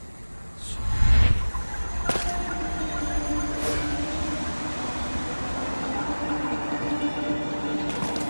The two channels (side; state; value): both; inverted; correlation -1.00